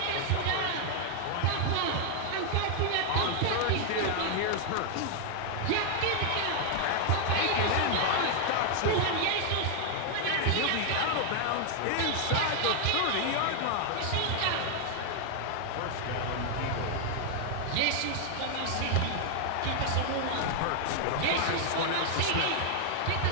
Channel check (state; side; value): different; both; correlation 0.00